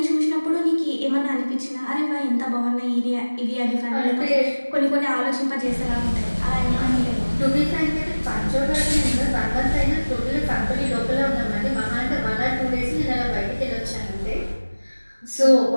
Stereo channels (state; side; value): inverted; both; correlation -1.00